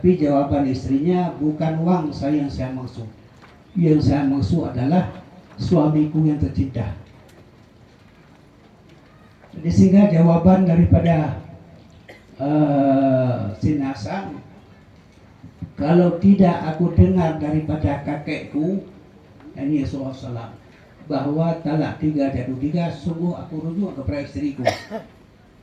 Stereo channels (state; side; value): identical; both; correlation 1.00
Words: jawaban istrinya, bukan uang saya yang saya maksud. Yang saya maksud adalah suamiku yang tercinta. Jadi sehingga jawaban daripada Sinasan, kalau tidak aku dengar daripada kakekku, ini Rasulullah SAW, bahwa talak 3 jatuh 3, sungguh aku rujuk kepada istriku.